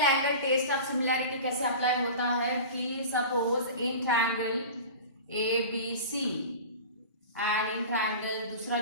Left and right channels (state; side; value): inverted; both; correlation -0.34